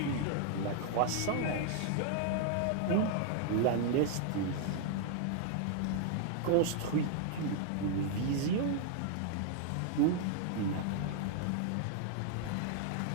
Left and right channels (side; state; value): both; different; correlation 0.00